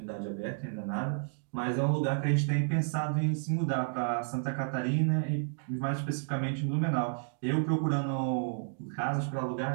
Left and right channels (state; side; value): silent; left; digital silence